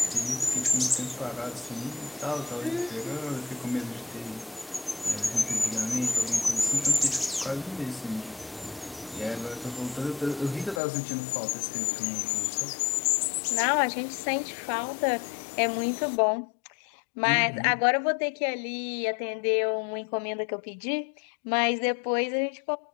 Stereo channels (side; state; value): right; drops out; at 10.8 s